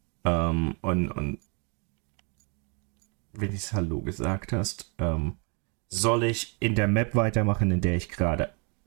und wenn ich Hallo gesagt hast, soll ich in der Map weitermachen, in der ich gerade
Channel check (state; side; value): quieter; left; 35.8 dB